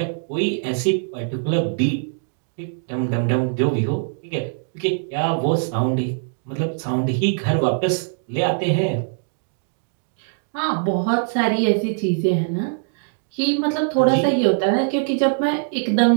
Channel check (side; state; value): left; silent; digital silence